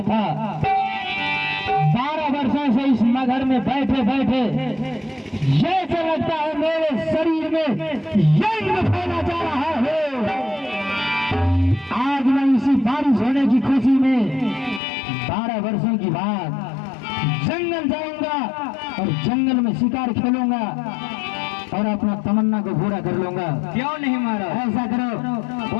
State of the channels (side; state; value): right; drops out; at 14.8 s